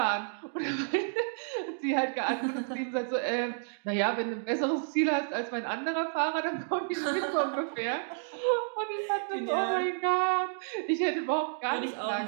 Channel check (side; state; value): left; silent; digital silence